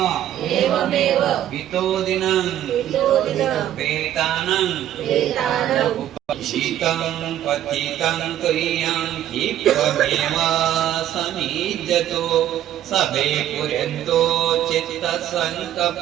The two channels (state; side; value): quieter; left; 11.7 dB